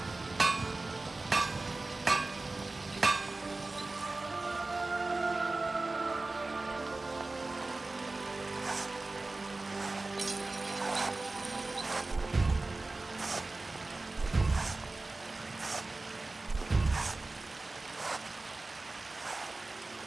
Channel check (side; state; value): left; quieter; 3.2 dB